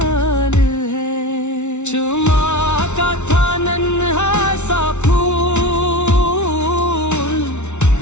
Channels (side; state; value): right; late; 0.82 ms